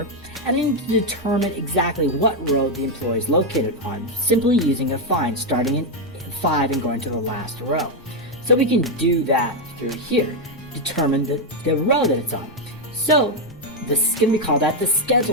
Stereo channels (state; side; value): noise; right; rumble, 24 dB below the sound